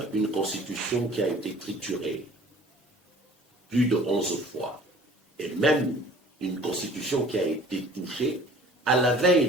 une constitution qui a été triturée plus de 11 fois, et même une constitution qui a été touchée à la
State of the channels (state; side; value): normal; both; correlation 0.49